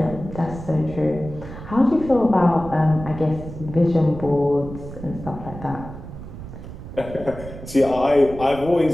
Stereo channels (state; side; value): noise; right; rumble, 12 dB below the sound